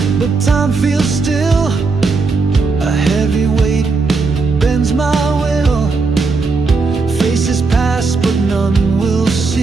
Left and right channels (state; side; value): quieter; left; 4.2 dB